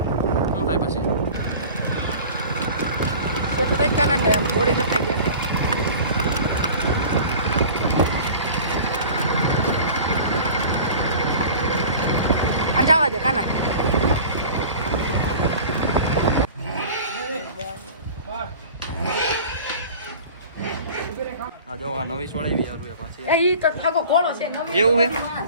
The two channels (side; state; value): both; inverted; correlation -0.41